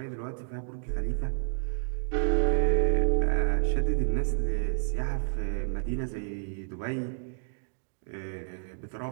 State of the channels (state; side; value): silent; left; digital silence